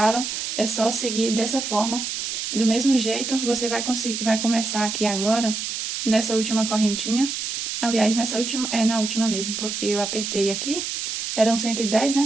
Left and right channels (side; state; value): right; noise; hiss, 4 dB below the sound